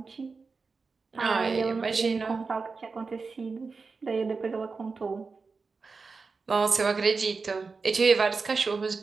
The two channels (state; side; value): quieter; left; 4.5 dB